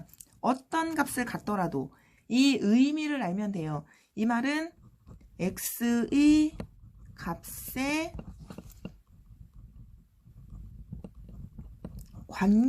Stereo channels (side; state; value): both; identical; correlation 1.00